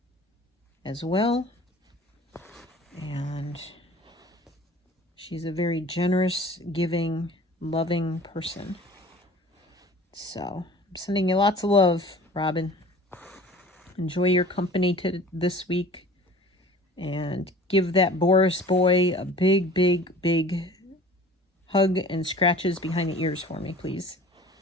as well. And she's a very generous, giving, loving person. So I'm sending you lots of love, Robin. Enjoy your company this week. And give that Boris boy a big hug and scratches behind the ears for me, please.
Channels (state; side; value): normal; both; correlation 0.44